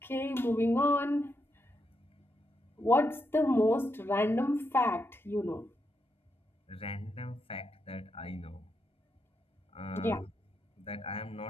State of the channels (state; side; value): normal; both; correlation 0.83